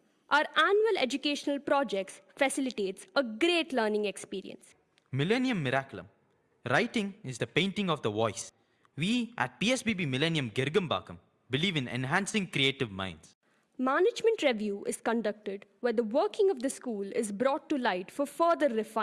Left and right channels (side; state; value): both; identical; correlation 1.00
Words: Our annual educational projects facilitates a great learning experience. Millennium Miraculum. Writing is the painting of the voice. We at PSBB Millennium Girgambakam believe in enhancing creative minds. Management review is conducted where the working of the school is brought to light for further